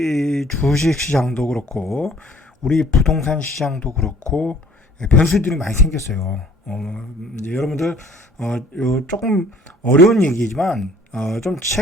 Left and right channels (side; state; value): both; normal; correlation 0.55